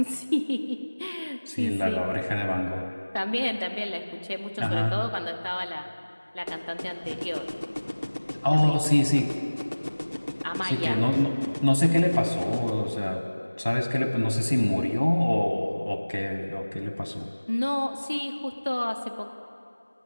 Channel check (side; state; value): both; inverted; correlation -1.00